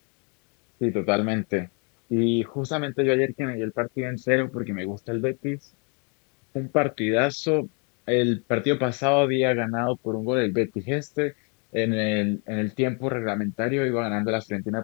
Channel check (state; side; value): quieter; right; 36.1 dB